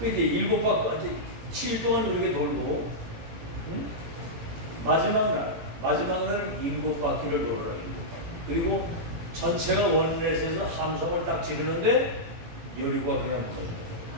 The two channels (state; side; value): late; left; 17 ms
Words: 7일 동안 우리가 돌고, 응? 마지막 날 7바퀴를 돌아라. 그리고 전체가 원넷에서 함성을 딱 지르는데 여리고가 그냥 무너져요.